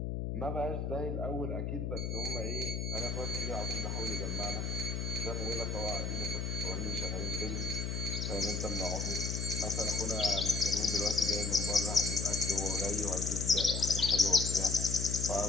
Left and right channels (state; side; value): noise; left; hum, 2 dB below the sound